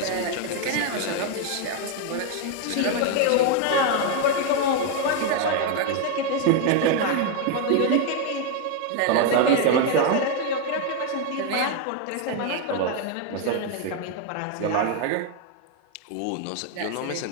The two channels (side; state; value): both; different; correlation 0.01